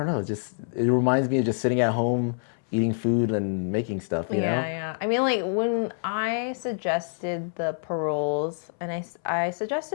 know, it reminds me of just sitting at home eating food and making stuff, you know? Yeah. I mean, like, when I suggested the paroles, and I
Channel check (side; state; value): right; silent; 61 dB below the other